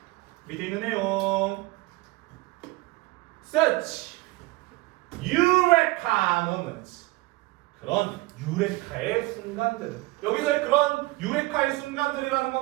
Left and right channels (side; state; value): left; quieter; 20.8 dB